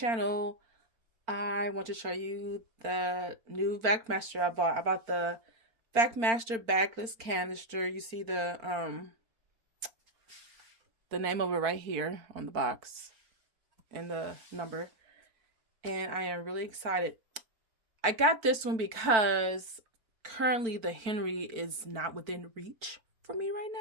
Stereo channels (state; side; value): late; left; 4.4 ms